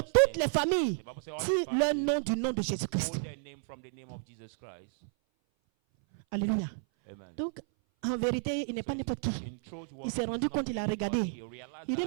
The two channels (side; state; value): left; silent; 56 dB below the other